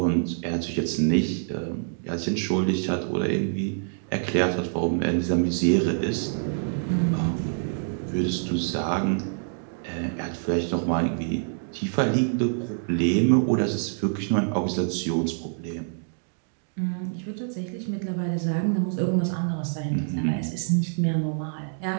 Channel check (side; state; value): left; silent; digital silence